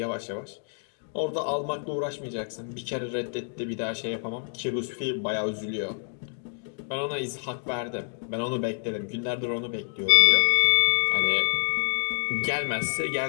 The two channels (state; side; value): silent; right; 60 dB below the other